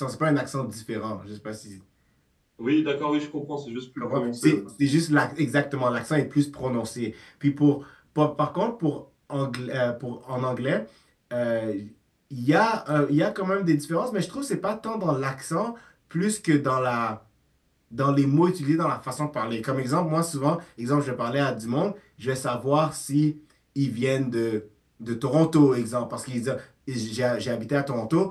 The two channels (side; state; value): both; identical; correlation 1.00